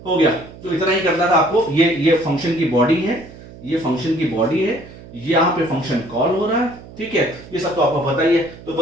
हो गया। तो इतना ही करना था आपको। ये फंक्शन की बॉडी है, ये फंक्शन की बॉडी है, यहां पे फंक्शन कॉल हो रहा है। ठीक है, ये सब तो आपको पता ही है। तो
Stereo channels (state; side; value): noise; right; hum, 18 dB below the sound